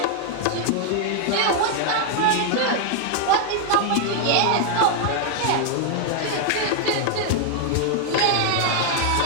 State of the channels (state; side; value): different; both; correlation 0.00